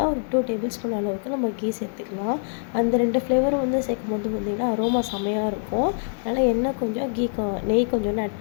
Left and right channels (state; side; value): silent; right; 59 dB below the other